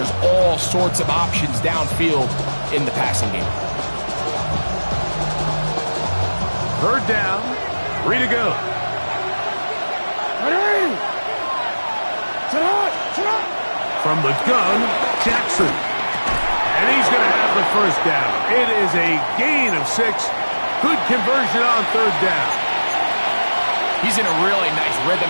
all sorts of options downfield in the passing game. Third down, 3 to go. From the gun, Jackson. And he's going to have the first down. It is a gain of 6. Good conversion on third down. He's in a really nice rhythm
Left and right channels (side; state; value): both; inverted; correlation -1.00